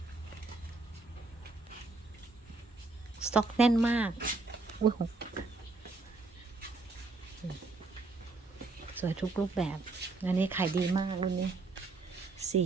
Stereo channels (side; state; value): left; quieter; 3.6 dB